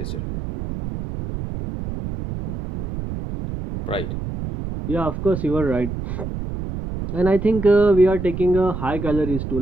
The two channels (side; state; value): right; noise; rumble, 6 dB below the sound